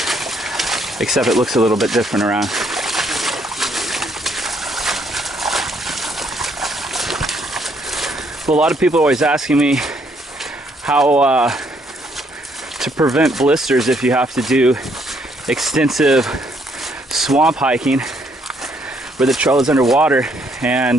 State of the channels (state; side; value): normal; both; correlation 0.70